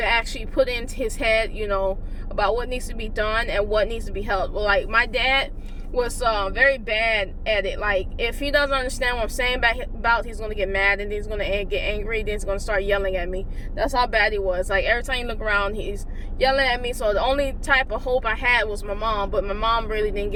actually put into his head, you know, about what needs to be done and what needs to be helped. Well, like, my dad was very bad at it. Like, if he doesn't understand what I'm saying about, he's going to get mad, and he's going to get angry, then he's going to start yelling at me. That's how bad he was. Like, every time you look around, he's yelling at me. So the only type of hope I had was my mom, but my mom really didn't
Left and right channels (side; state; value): both; identical; correlation 1.00